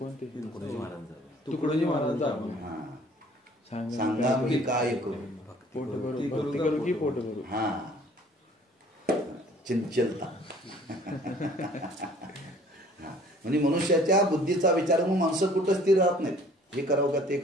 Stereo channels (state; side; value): normal; both; correlation 0.54